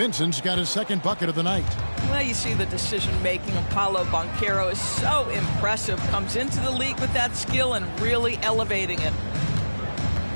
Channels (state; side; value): inverted; both; correlation -1.00